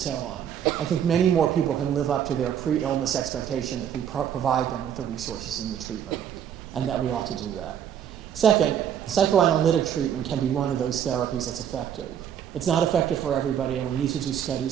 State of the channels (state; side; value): quieter; left; 9.2 dB